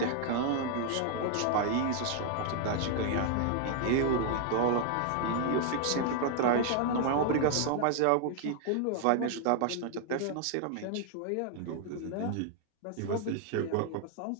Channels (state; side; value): different; both; correlation 0.00